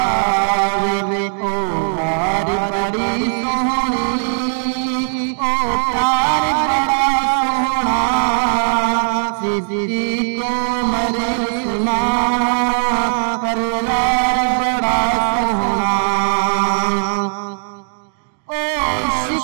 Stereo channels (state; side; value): silent; left; digital silence